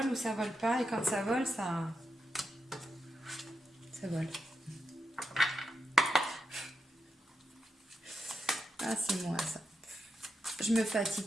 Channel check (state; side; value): normal; both; correlation 0.86